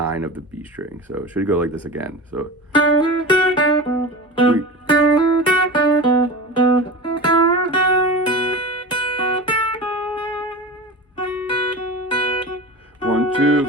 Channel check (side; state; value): both; normal; correlation 0.30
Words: of the B string. So it should go like this again. So. One, two,